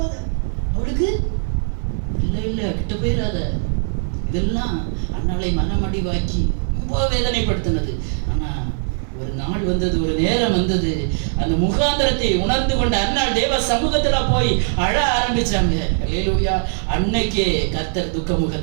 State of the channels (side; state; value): left; silent; digital silence